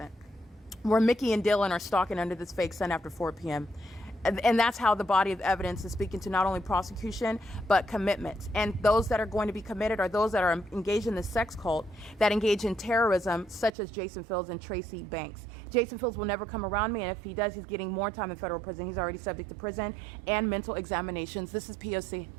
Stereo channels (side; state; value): left; drops out; at 13.7 s